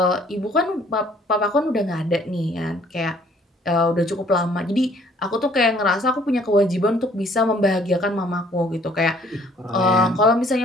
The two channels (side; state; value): both; normal; correlation 0.59